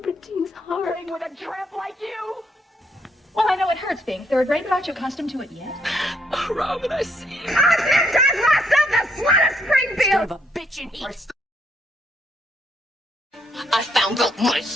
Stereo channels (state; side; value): normal; both; correlation 0.73